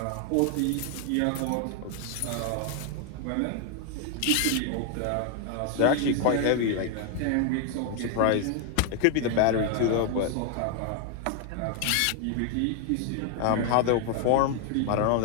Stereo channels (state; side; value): different; both; correlation 0.00